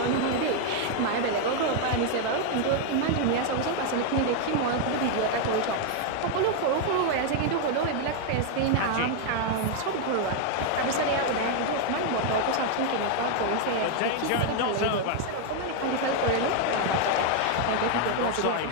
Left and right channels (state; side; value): different; both; correlation 0.00